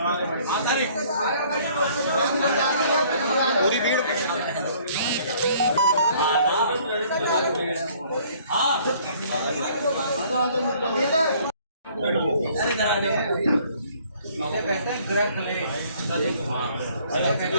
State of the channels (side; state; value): both; inverted; correlation -0.58